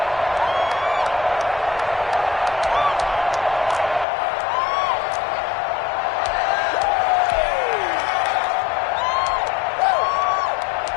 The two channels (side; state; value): right; drops out; at 4.0 s